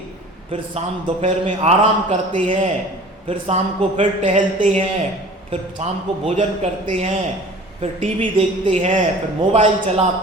फिर शाम दोपहर में आराम करते हैं, फिर शाम को फिर टहलते हैं, फिर शाम को भोजन करते हैं, फिर टीवी देखते हैं, फिर मोबाइल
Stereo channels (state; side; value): normal; both; correlation 0.44